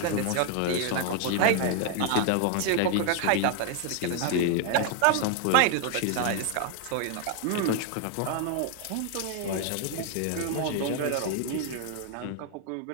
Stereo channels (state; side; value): different; both; correlation 0.01